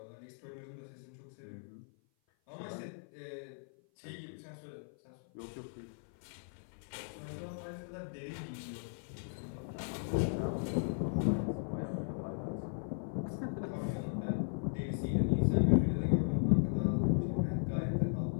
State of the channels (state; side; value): silent; right; 53 dB below the other